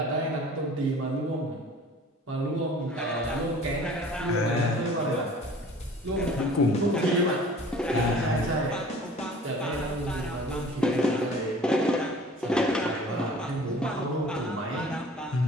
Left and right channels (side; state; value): both; normal; correlation 0.48